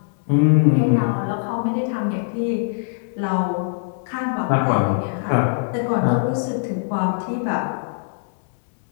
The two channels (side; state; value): right; silent; digital silence